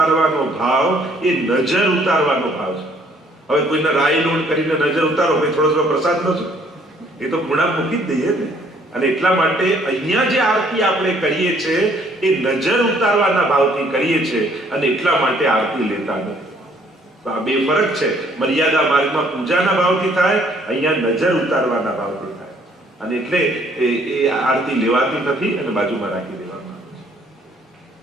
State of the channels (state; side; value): normal; both; correlation 0.62